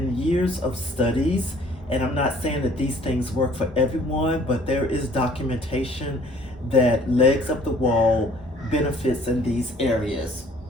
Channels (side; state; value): both; normal; correlation 0.56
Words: years of studies, and I'm not saying that these things work for everyone, but there is documentation that legs up the wall benefits in these areas.